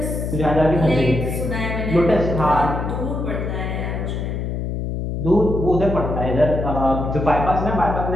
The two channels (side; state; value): left; noise; hum, 3 dB below the sound